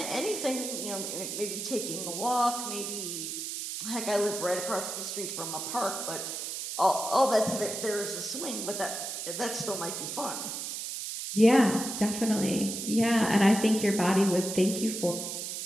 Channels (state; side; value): noise; right; hiss, 5 dB below the sound